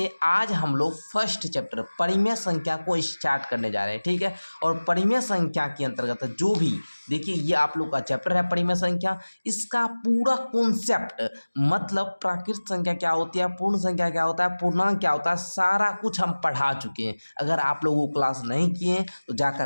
आज हम लोग फर्स्ट चैप्टर परिमेय संख्या को स्टार्ट करने जा रहे हैं। ठीक है, और परिमेय संख्या के अंतर्गत जो भी देखिए ये आप लोग का चैप्टर है परिमेय संख्या, इसका पूरा कॉन्सेप्ट मतलब प्राकृत संख्या क्या होती है, पूर्ण संख्या क्या होता है, पूर्णांक क्या होता है, सारा कुछ हम पढ़ा चुके हैं। अगर आप लोग वो क्लास नहीं किए हैं तो जाकर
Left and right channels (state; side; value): inverted; both; correlation -1.00